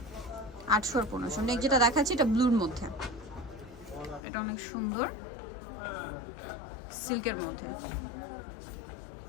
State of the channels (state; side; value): drops out; right; at 4.2 s